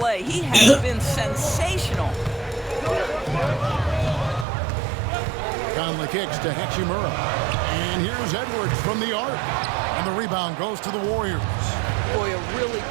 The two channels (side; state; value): left; drops out; at 4.5 s